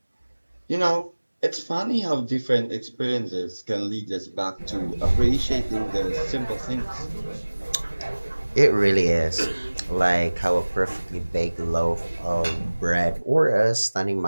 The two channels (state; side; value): inverted; both; correlation -1.00